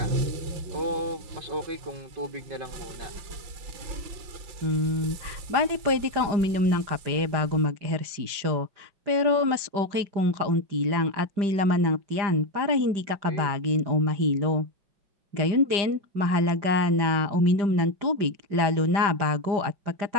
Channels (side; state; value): left; late; 5.0 ms